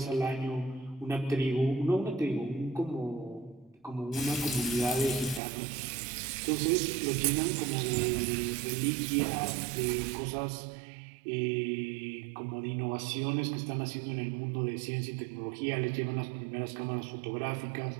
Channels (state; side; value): drops out; left; at 5.4 s